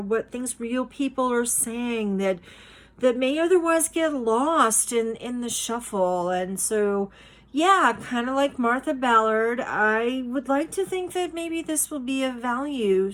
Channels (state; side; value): identical; both; correlation 1.00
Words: what things real people are saying that may otherwise get lost in the shuffle. And so, yeah, kind of like Martha Ballard, I would like to think that maybe this will be of value